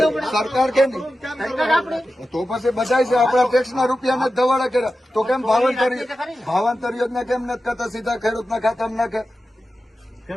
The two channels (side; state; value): both; normal; correlation 0.92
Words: સરકાર કે નહીં તો પછી બધા છે આપણા ટેક્સ ના રૂપિયા ને ધવાડા કર્યા તો કેમ ભાવાંતર યોજના કેમ નથી કરતા સીધા ખેડૂતના ખાતામાં નાખે